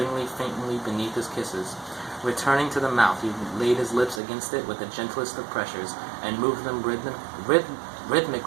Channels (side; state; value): left; drops out; at 4.2 s